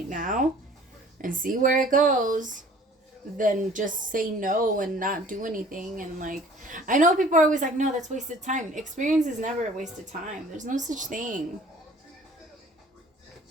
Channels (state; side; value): normal; both; correlation 0.51